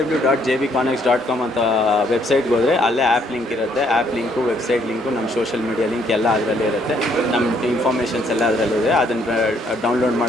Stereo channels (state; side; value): normal; both; correlation 0.68